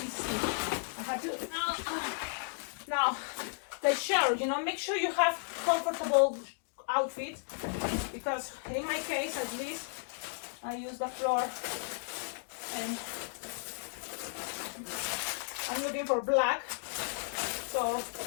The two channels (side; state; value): right; silent; digital silence